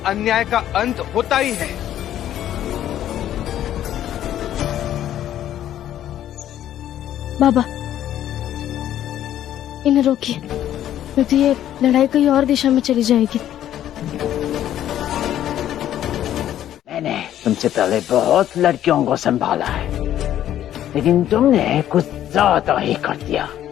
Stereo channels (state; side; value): quieter; right; 11.6 dB